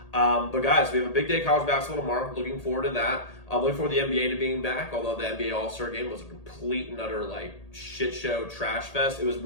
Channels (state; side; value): late; right; 1.8 ms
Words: But guys, we have a big day of college basketball tomorrow. Looking forward to that. I'm looking forward to the NBA to being back, although the NBA All-Star game was a complete and utter shit show, trash fest. It was